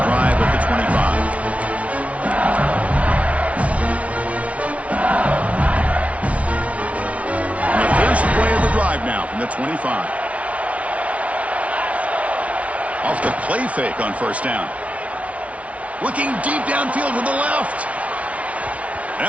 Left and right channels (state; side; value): late; left; 0.065 ms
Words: drive at the 25. And the first play of the drive now from the 25. Off the play fake on first down. Looking deep downfield to the left.